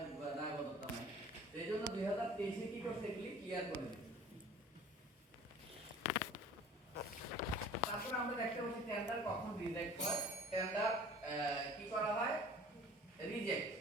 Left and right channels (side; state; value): both; normal; correlation 0.46